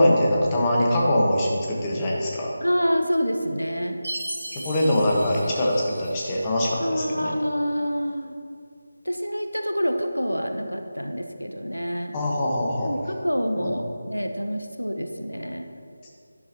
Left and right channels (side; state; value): both; inverted; correlation -0.92